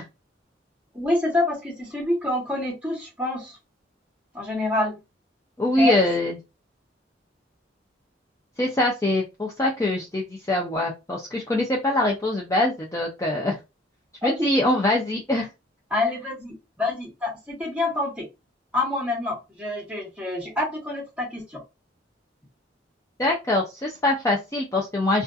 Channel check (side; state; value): both; normal; correlation 0.54